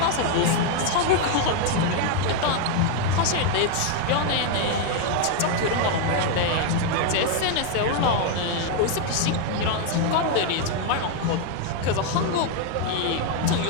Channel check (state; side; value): different; both; correlation 0.01